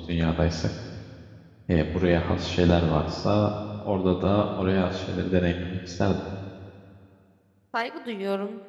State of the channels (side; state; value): both; identical; correlation 1.00